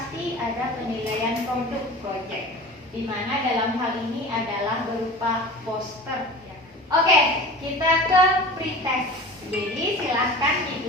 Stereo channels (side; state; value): both; normal; correlation 0.37